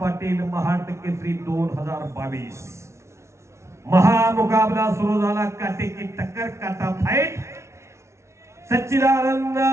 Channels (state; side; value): late; left; 0.13 ms